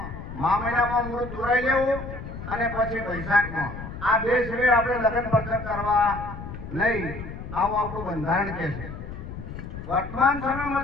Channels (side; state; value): left; noise; rumble, 10 dB below the sound